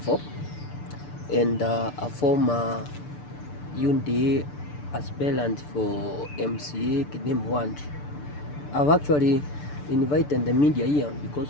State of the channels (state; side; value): late; right; 6.8 ms